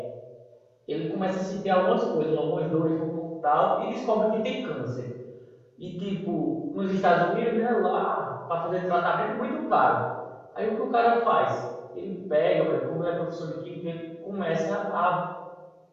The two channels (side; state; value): both; identical; correlation 1.00